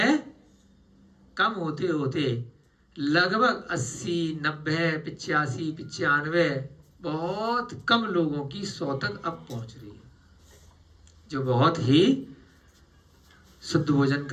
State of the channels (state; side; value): identical; both; correlation 1.00